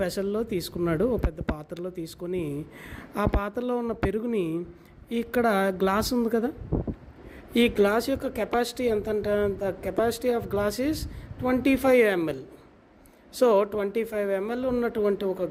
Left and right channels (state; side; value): identical; both; correlation 1.00